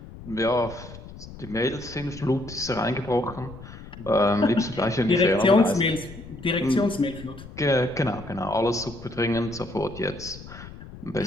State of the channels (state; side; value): noise; left; rumble, 15 dB below the sound